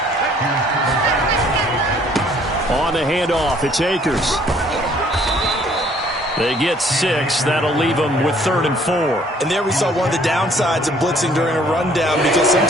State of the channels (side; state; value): both; normal; correlation 0.60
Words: On the handoff, it's Akers. They get 6. That'll leave them with 3rd and 4. And there we saw one of the downsides of blitzing during a rundown, because